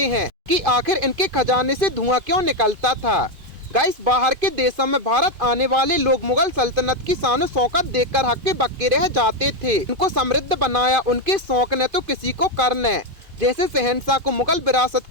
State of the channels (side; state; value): left; late; 2.5 ms